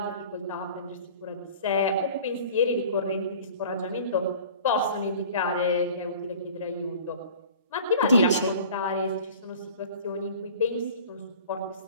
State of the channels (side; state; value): both; inverted; correlation -0.44